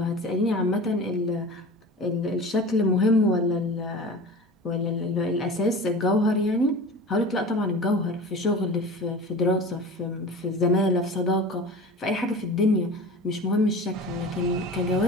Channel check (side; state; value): both; normal; correlation 0.36